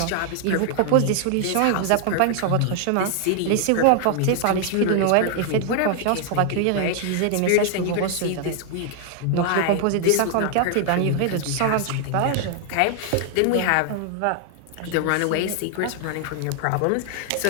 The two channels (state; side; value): different; both; correlation 0.00